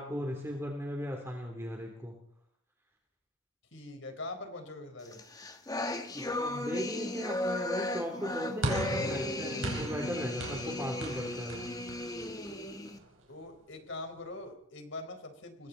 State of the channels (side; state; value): both; normal; correlation 0.56